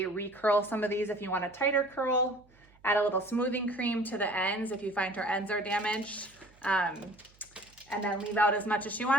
recurl some of these if you want a tighter curl. Add a little smoothing cream to the ends if you find her ends are damaged. And then leave out as much as she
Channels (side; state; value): right; noise; hum, 29 dB below the sound